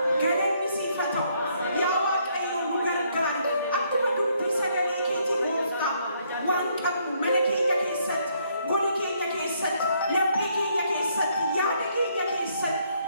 ገለኒ ሲፈተው ያዋቀዮ ኑገርጋሪ አክመ ዱብቲ ሰገሌ ኬቲ ጎፍታ ዋንቀቡ መለኬኛ ኬሰት ጎሊ ኬኛ ኬሰት ለቤ ኬኛ ኬሰት ያደ ኬኛ ኬሰት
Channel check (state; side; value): inverted; both; correlation -0.70